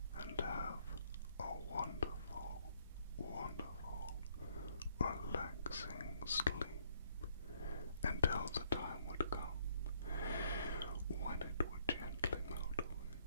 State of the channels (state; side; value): inverted; both; correlation -0.67